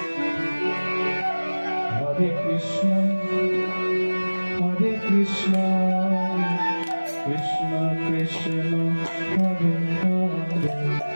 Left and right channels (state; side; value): inverted; both; correlation -1.00